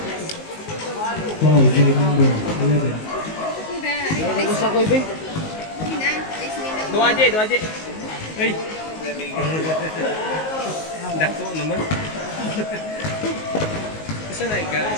Foul, game number 11. Gusto ko ibe. Dua aja. Hei. Dako naman. Isa na ka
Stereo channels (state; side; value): late; right; 19 ms